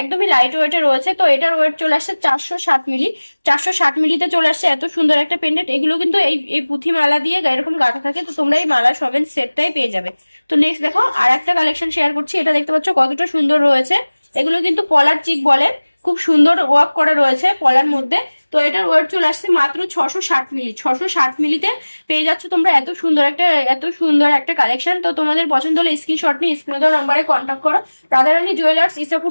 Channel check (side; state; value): both; inverted; correlation -1.00